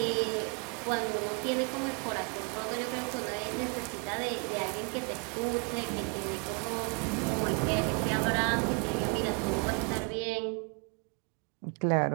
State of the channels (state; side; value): quieter; left; 35.9 dB